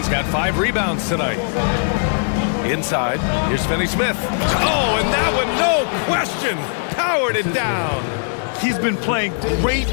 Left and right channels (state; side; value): silent; right; digital silence